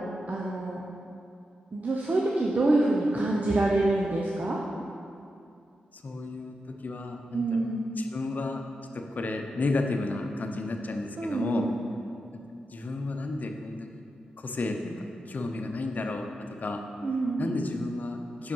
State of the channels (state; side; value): normal; both; correlation 0.87